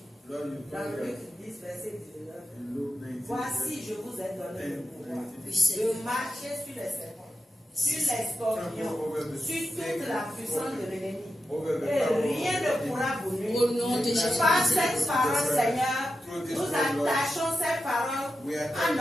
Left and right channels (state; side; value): normal; both; correlation 0.90